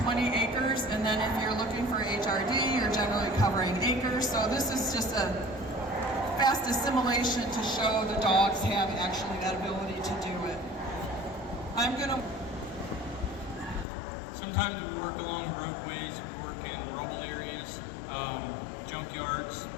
acres, and then if you're looking for HRD, you're generally covering acres. So this is just a fast assimilation to show the dogs have actually that ability to do it. Sometimes we work along roadways, we work in rubble areas, junkyards.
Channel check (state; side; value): drops out; right; at 13.9 s